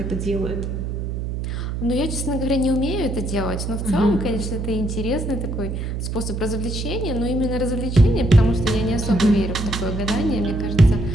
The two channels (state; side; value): noise; right; hum, 4 dB below the sound